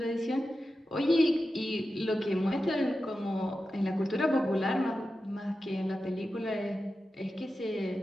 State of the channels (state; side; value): normal; both; correlation 0.92